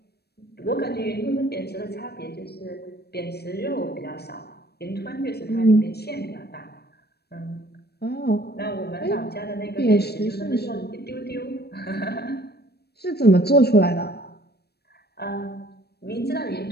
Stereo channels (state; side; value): late; right; 0.47 ms